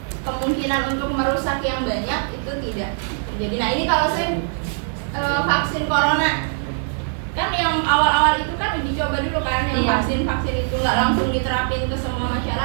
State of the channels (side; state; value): left; silent; 64 dB below the other